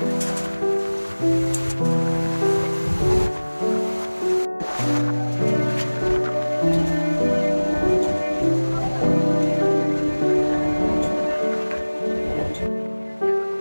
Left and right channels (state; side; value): inverted; both; correlation -1.00